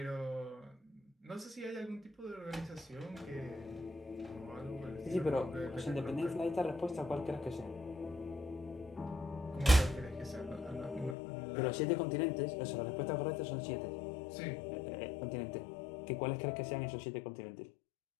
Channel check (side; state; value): right; drops out; at 11.2 s